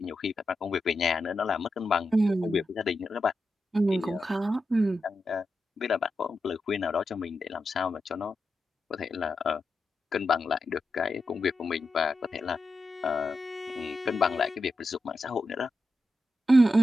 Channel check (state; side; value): normal; both; correlation 0.88